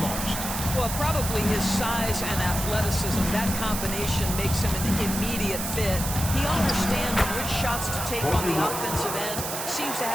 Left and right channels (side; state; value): right; noise; hiss, 5 dB below the sound